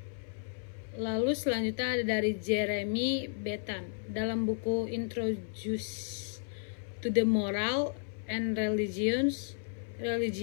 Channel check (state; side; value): silent; right; 56 dB below the other